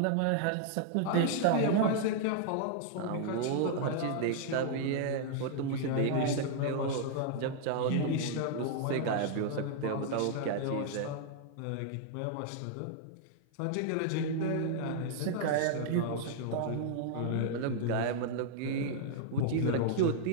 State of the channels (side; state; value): both; different; correlation -0.01